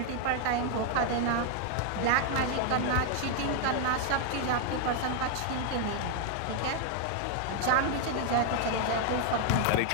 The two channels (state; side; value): different; both; correlation 0.00